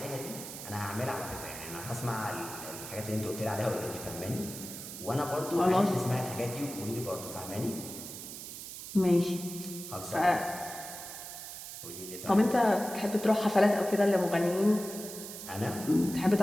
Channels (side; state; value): right; noise; hiss, 10 dB below the sound